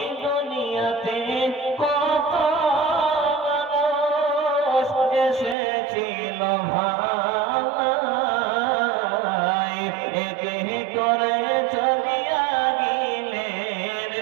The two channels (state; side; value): drops out; left; at 5.6 s